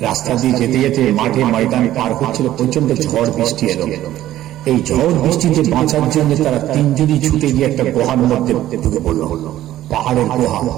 রাস্তা দিয়ে যেতে যেতে মাঠে ময়দানে পার হচ্ছিল, প্রচন্ড ঝড় বৃষ্টি এলো। এই ঝড় বৃষ্টিতে বাঁচার জন্য তারা তিনজনই ছুটে গিয়ে একটা গুহার মধ্যে ঢুকে পড়ল, পাহাড়ের গুহা।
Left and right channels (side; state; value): left; quieter; 13.6 dB